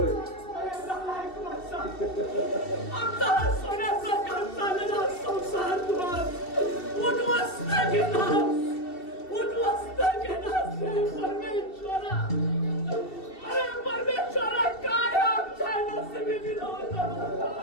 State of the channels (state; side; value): late; right; 2.7 ms